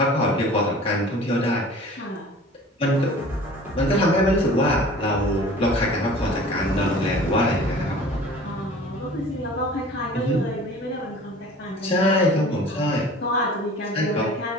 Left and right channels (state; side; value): normal; both; correlation 0.44